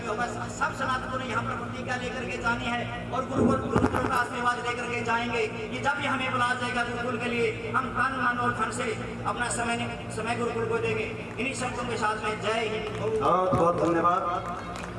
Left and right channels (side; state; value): both; identical; correlation 1.00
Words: होगा, सब सनातनों ने यहाँ पर प्रतिज्ञा लेकर के जानी है और गुरुकुल का आशीर्वाद लेकर के जाएंगे कि जब भी हमें बुलाया जाएगा गुरुकुल के लिए, हम तन मन और धन से अपना समय गुरुकुल को देंगे। इन्हीं शब्दों के साथ में जय हिंद। बहुत बहुत धन्यवाद।